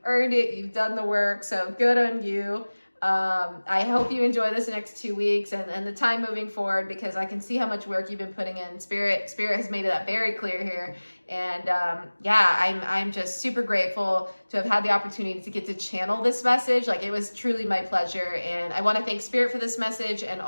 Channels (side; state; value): both; inverted; correlation -1.00